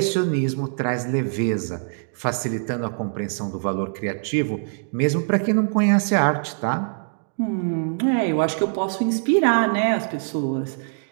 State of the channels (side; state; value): left; silent; digital silence